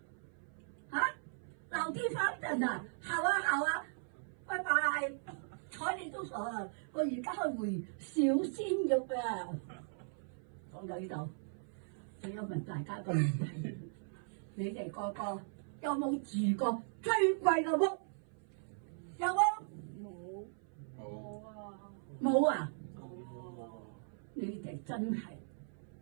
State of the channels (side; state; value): left; silent; 52 dB below the other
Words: 啊，老地方等啊，好啊，拜拜。睬你都傻啊！我而家去回小鮮肉啊！講到呢度，我有問大家個問題：你哋個個有冇住過最貴嘅屋？有冇？冇啊！冇啊！你哋真係